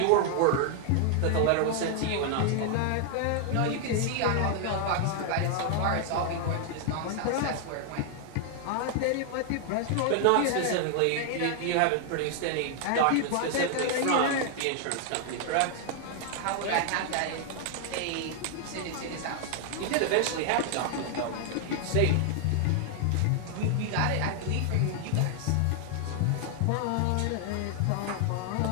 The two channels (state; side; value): different; both; correlation 0.00